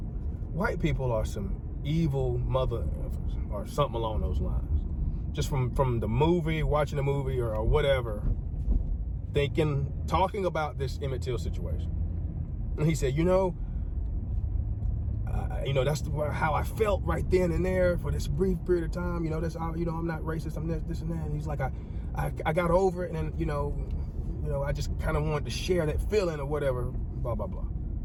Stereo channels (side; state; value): both; identical; correlation 1.00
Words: people are some evil mother or something along those lines. Just from the movie, watching the movie or whatever, talking about this Emmett Till situation. And he said, you know, you know, that's how I felt right then and there for this brief period of time. You know, that's how, you know, I'm not racist, I'm this and that. And he's like, I got over it, and then, you know, I just kind of wanted to share that feeling or whatever, blah, blah, blah.